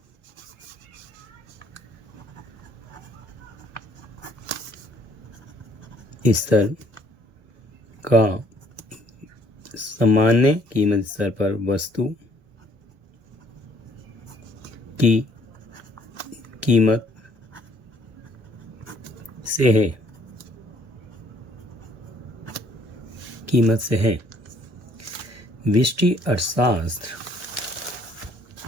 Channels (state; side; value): late; left; 1.0 ms